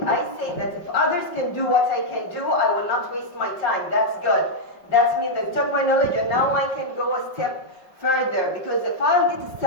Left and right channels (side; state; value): right; late; 5.3 ms